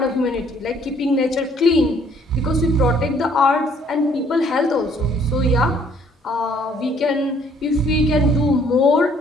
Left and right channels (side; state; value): both; normal; correlation 0.62